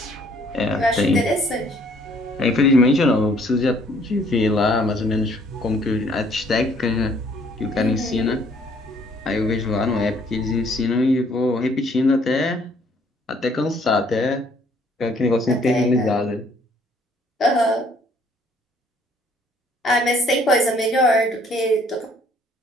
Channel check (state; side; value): normal; both; correlation 0.62